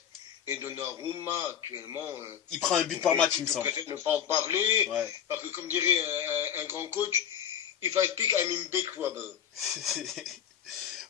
Et Donnarumma, actuellement... il prend un but par match, il me semble. Je préfère ne pas en parler, ouais. Parce que, comme dirait un grand coach, if I speak, I'm in big trouble.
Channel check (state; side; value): quieter; right; 9.2 dB